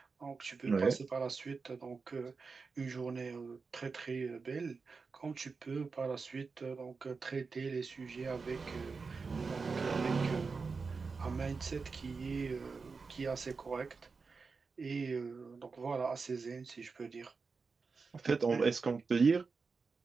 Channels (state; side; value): quieter; left; 4.7 dB